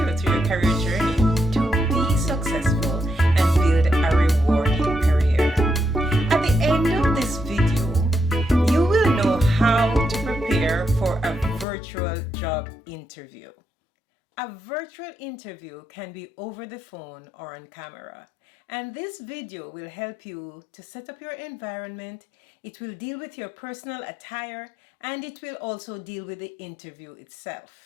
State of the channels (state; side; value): drops out; right; at 11.7 s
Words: through your career journey to be successful and build a rewarding career. At the end of this video, you will know how to prepare for a virtual job interview. A virtual interview can be over the phone or on camera. And this video will help you to set up your environment. It will deal with your personal attire, and it will also deal with the interview